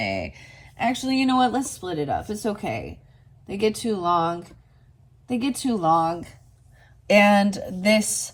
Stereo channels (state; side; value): identical; both; correlation 1.00